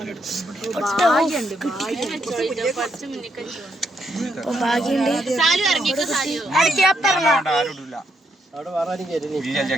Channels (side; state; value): both; normal; correlation 0.77